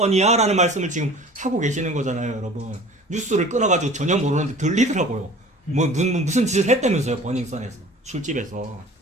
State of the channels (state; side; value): normal; both; correlation 0.44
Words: 라는 말씀을 지금 하고 계시는 거잖아요, 여러분. 뉴스를 끊어가지고 전혀 모르는데 들리더라고요. 무슨 짓을 했다면서요, 버닝썬에서. 술집에서.